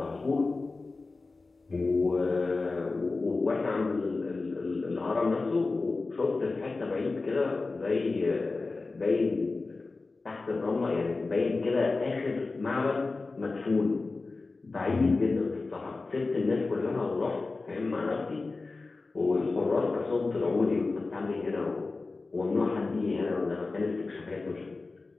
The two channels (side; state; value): right; quieter; 3.7 dB